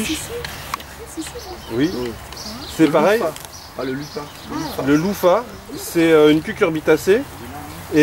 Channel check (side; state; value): both; identical; correlation 1.00